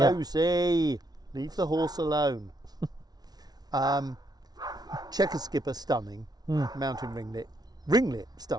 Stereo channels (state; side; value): late; left; 0.19 ms